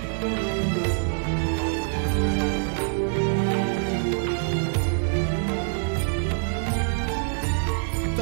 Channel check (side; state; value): left; silent; 62 dB below the other